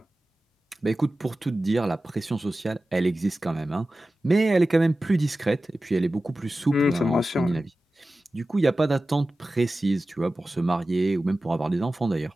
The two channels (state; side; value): normal; both; correlation 0.95